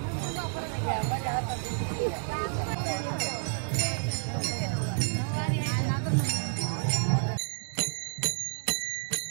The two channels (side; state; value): left; silent; 58 dB below the other